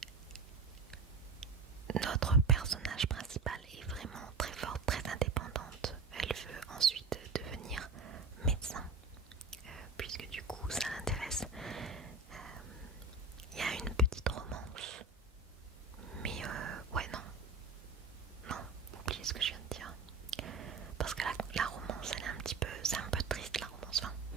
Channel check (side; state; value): left; quieter; 4.0 dB